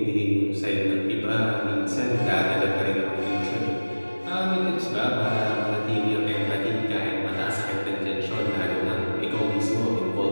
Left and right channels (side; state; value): both; inverted; correlation -1.00